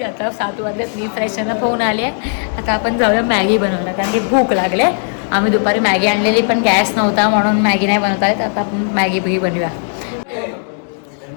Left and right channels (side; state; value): right; silent; digital silence